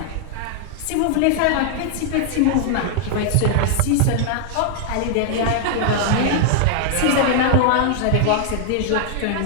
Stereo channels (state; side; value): different; both; correlation 0.00